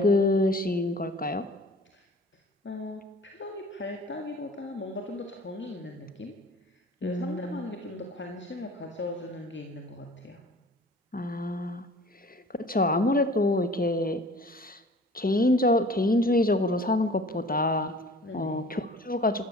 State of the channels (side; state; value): both; normal; correlation 0.47